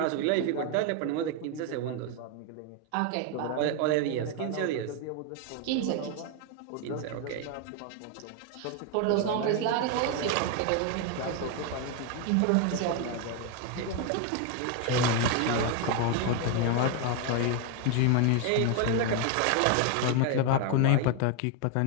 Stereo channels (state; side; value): different; both; correlation 0.01